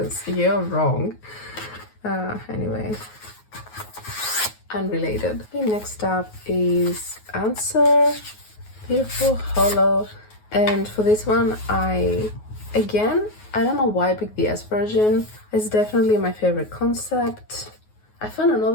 you're wrong. Anyway, unrelated. Okay, next up is Answer, Beautiful Hollow, and for this one, I don't know why I picked the S version. It's definitely my favorite concept. I found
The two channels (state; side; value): late; right; 9.4 ms